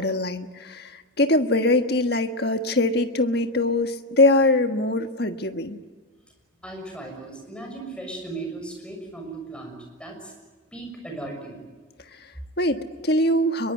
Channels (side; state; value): both; normal; correlation 0.12